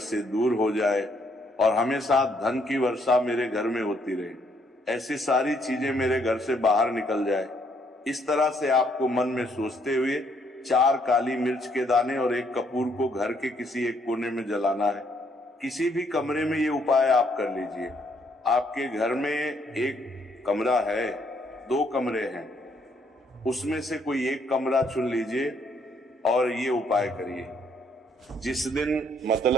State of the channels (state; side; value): normal; both; correlation 0.69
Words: दूर हो जाए और हमेशा धन की वर्षा मेरे घर में होती रहे, ऐसी सारी चीजें मेरे घर से बाहर निकल जाए। इस तरह से आपको मन में सोचते हुए 4 काली मिर्च के दाने और एक कपूर को घर के किसी एक कोने में जलाना है। किसी भी कमरे में ये उपाय आप कर लीजिए। आपके घर में एक कमरा है, 2 कमरे हैं, उसमें से कोई एक कमरा चुन लीजिए और ये उपाय करिए। जिस दिन,